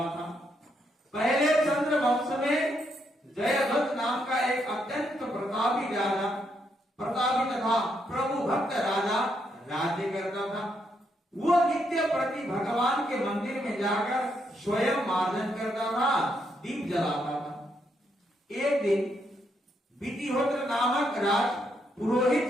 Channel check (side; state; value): both; normal; correlation 0.77